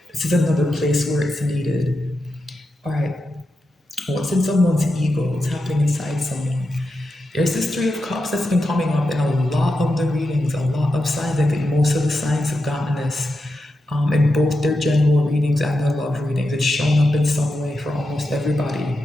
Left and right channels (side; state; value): both; normal; correlation 0.88